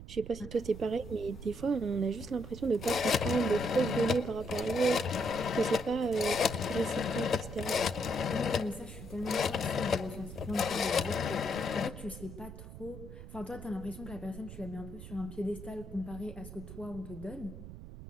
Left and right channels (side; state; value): right; noise; rumble, 12 dB below the sound